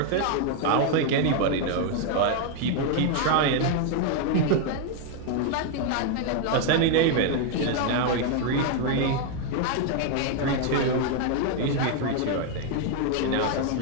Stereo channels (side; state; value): both; different; correlation 0.00